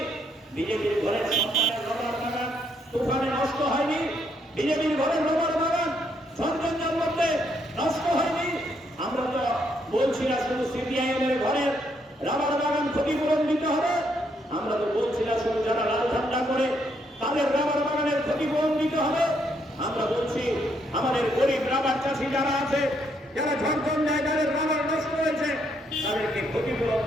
বিজেপির ঘরের সন্তানের রবার বাগান তুফানে নষ্ট হয়নি, বিজেপির ঘরের রবার বাগান ঝঞ্ঝার মধ্যে নষ্ট হয়নি। আমরা তো বলছি না শুধু সিপিআইএম এর ঘরের রাবার বাগান ক্ষতিপূরণ দিতে হবে, আমরা তো বলছি না শুধু যারা লাল ঠান্ডা করে তাদের রাবার বাগানের ক্ষতিপূরণ দিতে হবে। আমরা বলছি আমাদের গরিব মুর্শিদাবাদ চাষি যারা আছে, যারা ঝাড়খণ্ড যাদের রবার নষ্ট হয়েছে, তাদেরকে ক্ষতিপূরণ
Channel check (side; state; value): both; normal; correlation 0.74